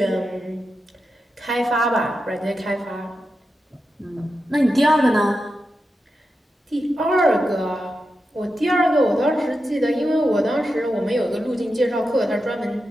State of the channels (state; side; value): normal; both; correlation 0.89